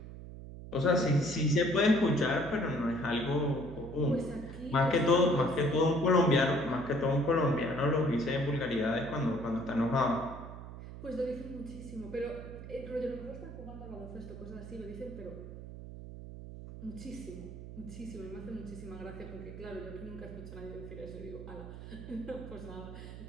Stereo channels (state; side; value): noise; right; hum, 12 dB below the sound